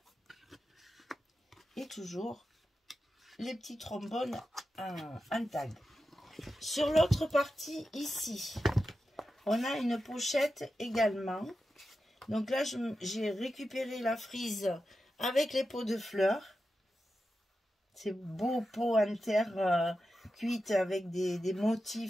Et toujours les petits trombones en tag. Sur l'autre partie, ici, on a une pochette également. Donc là, j'ai récupéré la frise avec les pots de fleurs. C'est beau pot en terre cuite avec des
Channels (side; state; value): both; normal; correlation 0.90